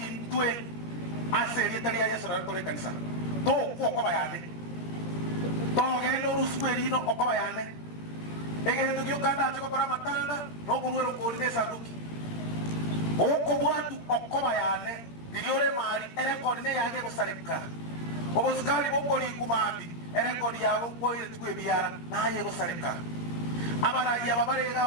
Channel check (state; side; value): late; right; 17 ms